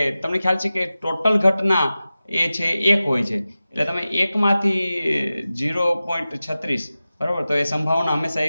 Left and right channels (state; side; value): inverted; both; correlation -0.95